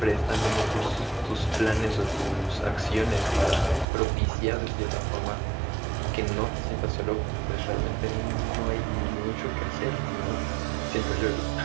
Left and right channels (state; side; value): drops out; left; at 3.9 s